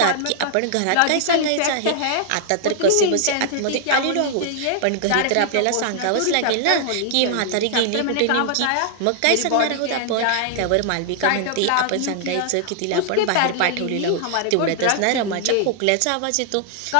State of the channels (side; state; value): both; different; correlation -0.01